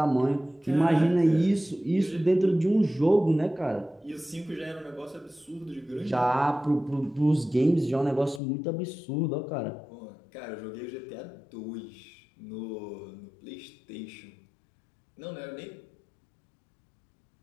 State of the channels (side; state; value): right; drops out; at 8.4 s